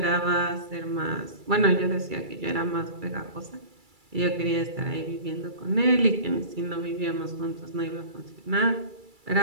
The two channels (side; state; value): left; late; 2.3 ms